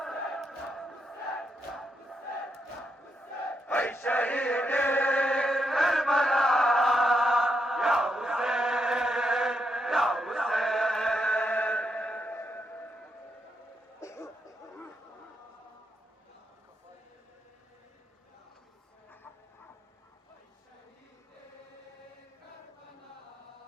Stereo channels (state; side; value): normal; both; correlation 0.81